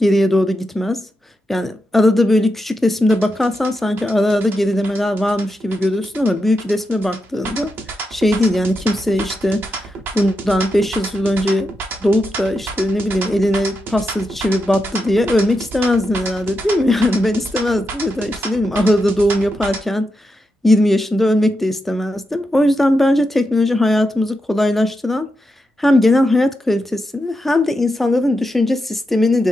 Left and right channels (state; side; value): normal; both; correlation 0.86